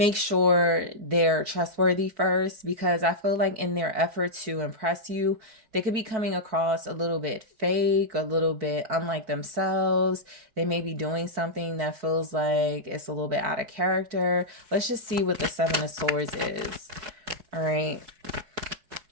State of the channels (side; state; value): left; late; 4.6 ms